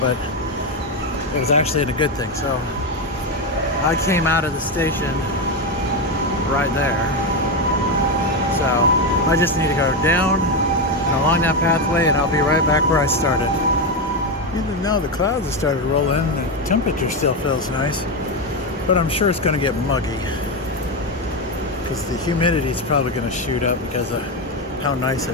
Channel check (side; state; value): both; normal; correlation 0.10